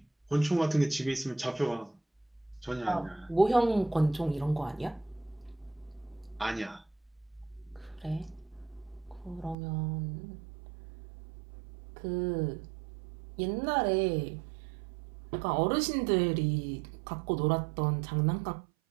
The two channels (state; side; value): drops out; left; at 9.6 s